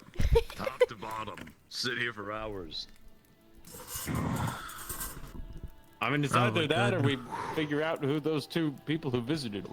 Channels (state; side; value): identical; both; correlation 1.00